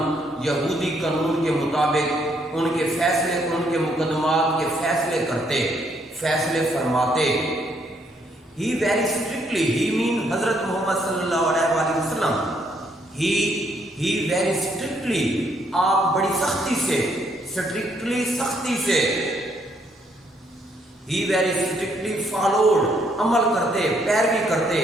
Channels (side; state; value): both; normal; correlation 0.71